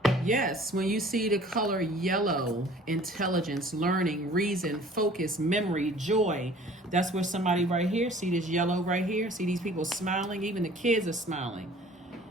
Yes, when you see the color yellow, intelligence, learning, reason, focus, memory, joy. That's where somebody right here, see this yellow right here? See these people smiling? Even the kids are smiling.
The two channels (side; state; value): both; normal; correlation 0.50